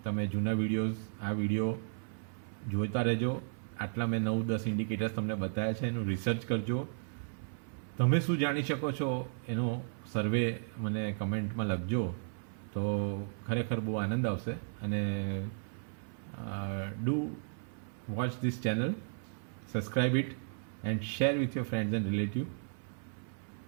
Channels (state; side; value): silent; left; 55 dB below the other